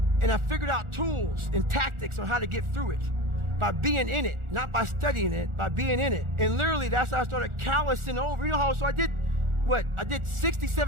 And I figured out tools and tactics on how to get through it by being in it, not by studying it, by being in it. And literally, that's how I started callousing over. You know how, so I did, what? I did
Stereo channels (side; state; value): left; late; 1.4 ms